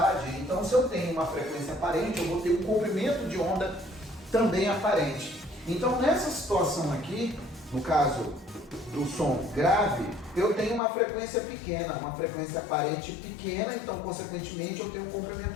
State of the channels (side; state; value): right; drops out; at 10.8 s